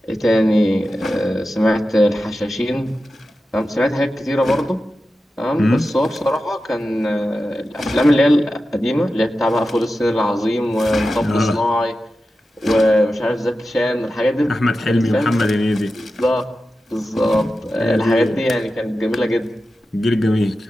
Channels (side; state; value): both; normal; correlation 0.92